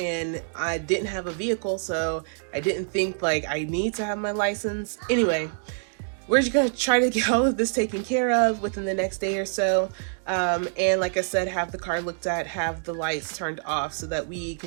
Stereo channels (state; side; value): silent; left; digital silence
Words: I didn't have a vehicle, so I didn't think like I need to have my license. Anyway, we're just gonna try to get all of this taken care of within the next day or so. And like I said, have the car looked at, have the lights turned off so that we